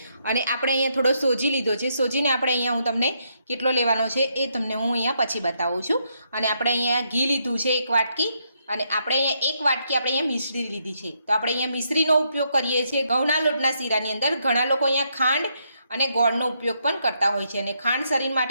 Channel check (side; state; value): both; inverted; correlation -0.77